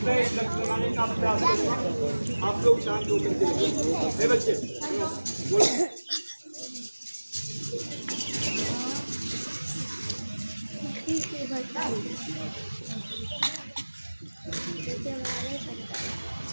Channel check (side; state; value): both; inverted; correlation -1.00